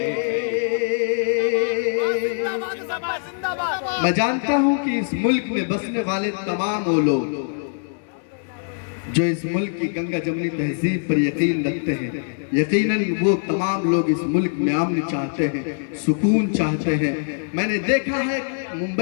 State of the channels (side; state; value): right; silent; digital silence